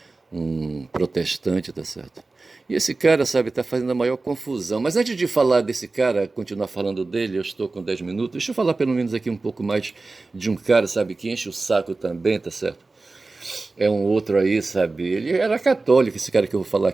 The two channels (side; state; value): left; quieter; 3.5 dB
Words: protestante, tá certo? E esse cara, sabe, está fazendo a maior confusão. Mas antes de falar desse cara, continuar falando dele, eu estou com 10 minutos, deixa eu falar pelo menos aqui um pouco mais de um cara, sabe, que enche o saco também, tá certo? É um outro aí, sabe? Ele era católico, esse cara que eu vou falar